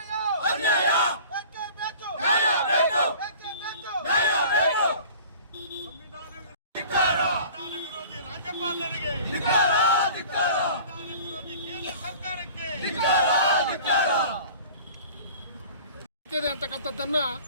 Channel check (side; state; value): both; inverted; correlation -0.44